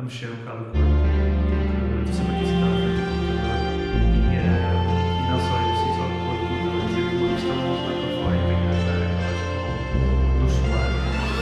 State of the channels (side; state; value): both; identical; correlation 1.00